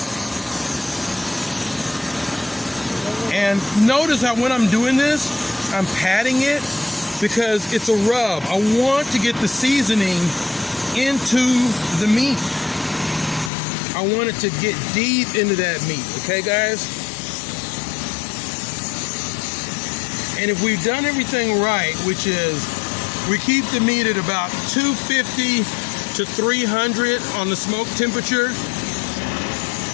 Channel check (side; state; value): right; drops out; at 13.5 s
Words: And notice how when I'm doing this, I'm patting it because it's a rub. I want to get the seasoning into the meat. I want it to get deep into that meat, okay, guys? And if we've done everything right, which is we keep the meat at about 250 to 300 on the smoke temperature,